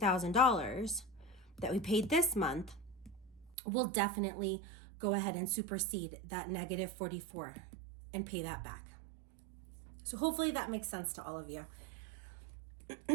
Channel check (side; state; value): left; drops out; at 3.6 s